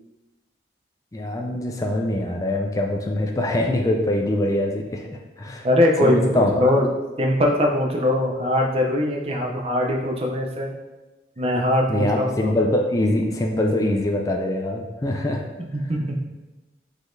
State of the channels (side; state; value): both; normal; correlation 0.56